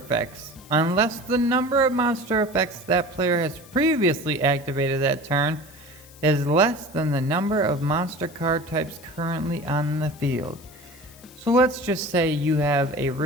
unless the number of monster effects that player has previously activated that turn is less than the number of monster card types currently on the field. So let's just say you have a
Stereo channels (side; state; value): left; noise; hiss, 23 dB below the sound